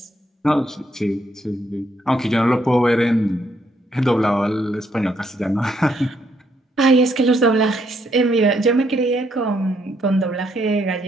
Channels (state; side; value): normal; both; correlation 0.73